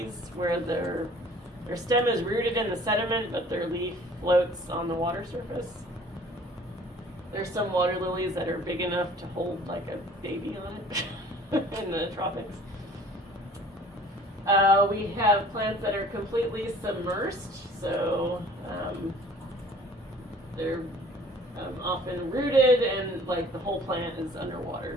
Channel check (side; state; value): both; normal; correlation 0.51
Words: where their stem is rooted in the sediment, but their leaf floats on the water surface. There's some water lilies that are big enough to hold like a baby on it in the tropics. We have plants that are completely submersed, so they're often rooted and like the whole plant is underwater.